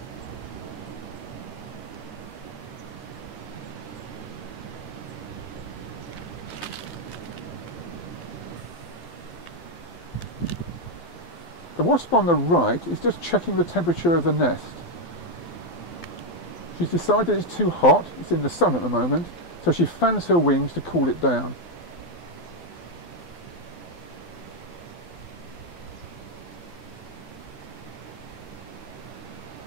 The wasp on the right is just checking the temperature of the nest. She's decided it's too hot, it's in the sun at the moment, so she fans her wings to cool it down.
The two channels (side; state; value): right; late; 12 ms